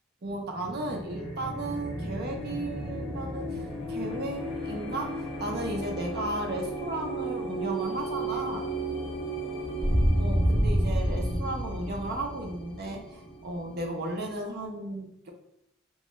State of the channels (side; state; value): both; normal; correlation 0.63